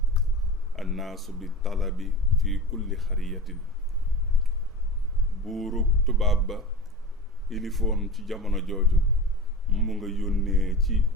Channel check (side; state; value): both; normal; correlation 0.32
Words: annaasu bi talabi fi kulli xariyatin buurug tubaab ba ilifoon ci jamono jooju mu nga yónnee ci